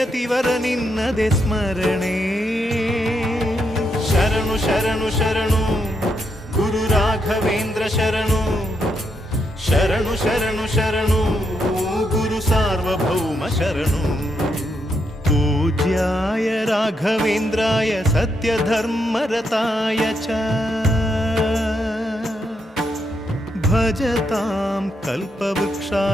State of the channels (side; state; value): both; normal; correlation 0.80